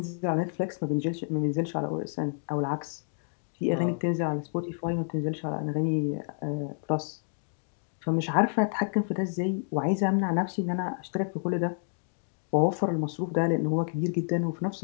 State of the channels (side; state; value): right; silent; digital silence